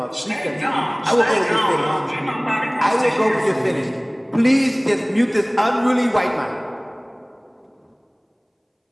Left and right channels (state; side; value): identical; both; correlation 1.00